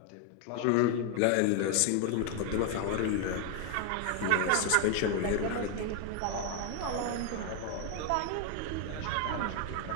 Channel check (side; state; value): both; different; correlation 0.00